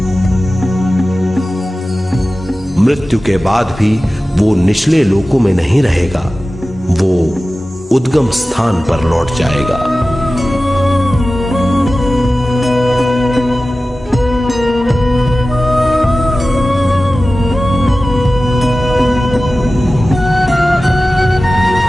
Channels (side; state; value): both; normal; correlation 0.96